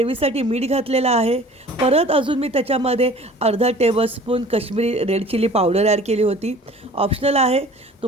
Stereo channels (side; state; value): both; normal; correlation 0.46